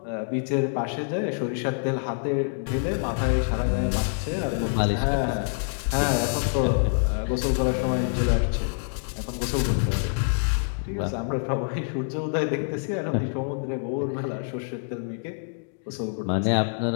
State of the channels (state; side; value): silent; right; digital silence